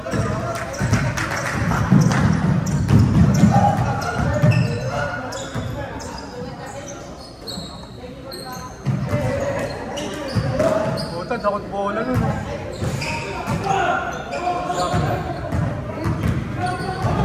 Takot bola nun.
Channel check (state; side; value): identical; both; correlation 1.00